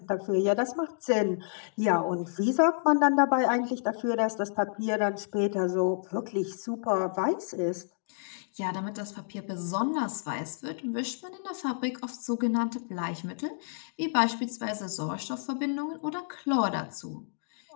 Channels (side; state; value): right; silent; digital silence